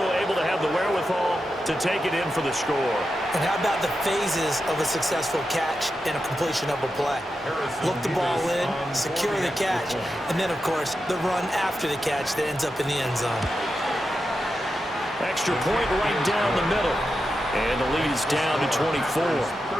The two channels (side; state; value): both; normal; correlation 0.89